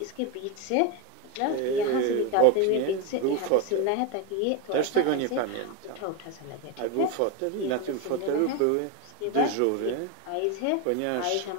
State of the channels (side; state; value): both; different; correlation 0.02